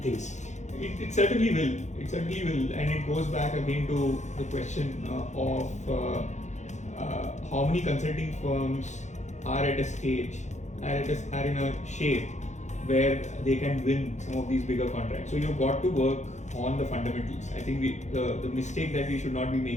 things? It certainly will. It certainly will, and it goes back again to the question of how many consulting firms are at a stage, are in a shape where they can win some of these bigger contracts. So you've got to work on the fundamentals. I think the mistake that we should not be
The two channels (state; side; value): late; right; 0.34 ms